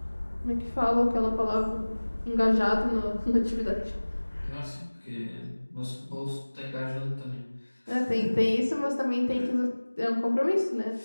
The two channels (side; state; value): both; inverted; correlation -1.00